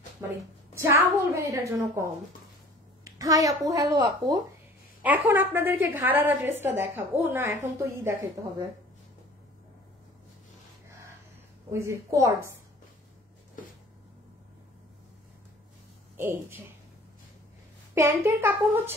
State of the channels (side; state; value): both; normal; correlation 0.48